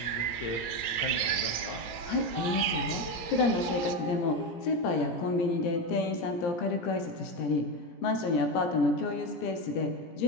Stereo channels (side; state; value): right; late; 17 ms